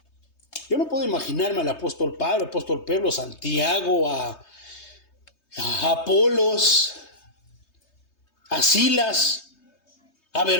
Yo no puedo imaginarme al apóstol Pablo, al apóstol Pedro, Santiago, a Apolos, a Silas, a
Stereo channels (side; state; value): right; late; 3.2 ms